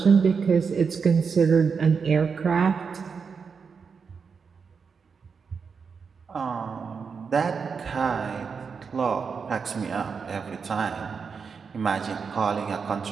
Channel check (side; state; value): left; quieter; 5.7 dB